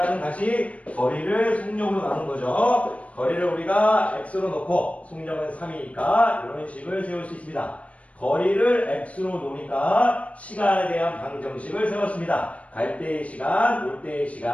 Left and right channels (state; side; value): late; right; 0.065 ms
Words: 다시 거리를 속력으로 나눈 거죠. 거리를 우리가 x로 놓고 속력은 3이니까 이런 식을 세울 수 있습니다. 거리를 x로 놓으니까 시간에 대한 방정식을 세웠습니다. 갈 때의 시간, 올 때의